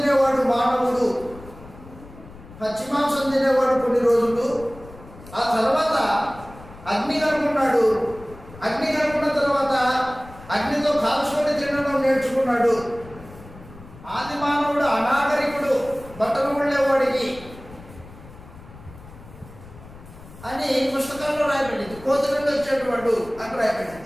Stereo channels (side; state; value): left; noise; rumble, 18 dB below the sound